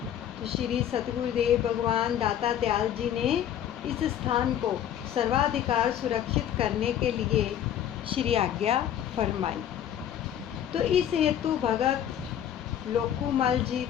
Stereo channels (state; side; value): quieter; right; 10.2 dB